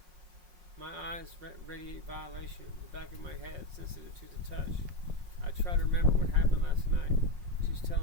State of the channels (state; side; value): late; left; 5.5 ms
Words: My eyes radiate violation, the back of my head sensitive to the touch. I try to remember what happened last night. She's